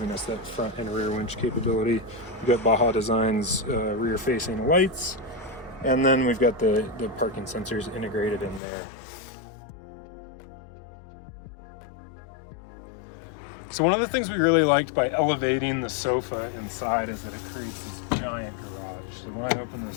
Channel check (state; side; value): drops out; right; at 8.6 s